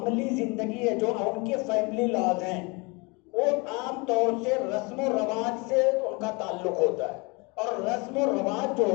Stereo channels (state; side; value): quieter; right; 28.4 dB